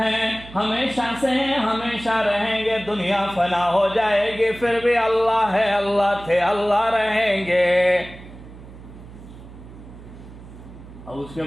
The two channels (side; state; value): right; noise; hum, 17 dB below the sound